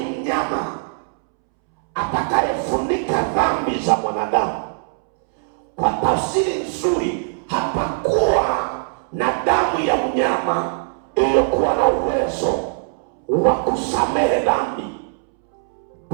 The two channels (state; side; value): silent; left; 65 dB below the other